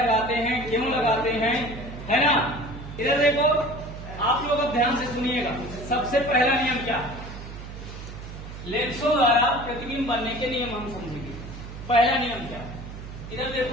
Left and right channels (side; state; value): right; noise; hum, 11 dB below the sound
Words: हैं, क्यों लगाते हैं, है ना। इधर देखो आप लोग अब ध्यान से सुनिएगा। सबसे पहला नियम क्या, लेंसों द्वारा प्रतिबिंब बनने के नियम हम समझेंगे। पहला नियम क्या, इधर